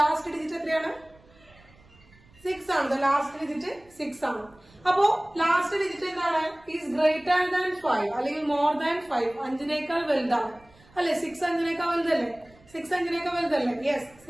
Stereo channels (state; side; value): noise; right; rumble, 28 dB below the sound